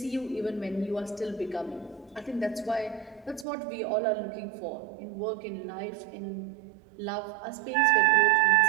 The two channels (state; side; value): drops out; left; at 3.5 s